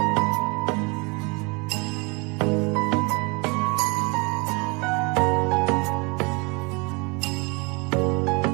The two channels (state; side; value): quieter; left; 29.1 dB